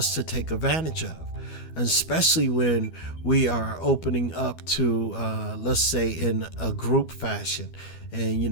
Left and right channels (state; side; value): late; right; 12 ms